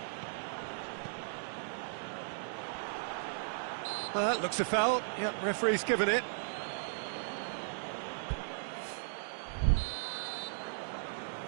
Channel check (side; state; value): left; silent; digital silence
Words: That looks a foul. Yep, referee's given it.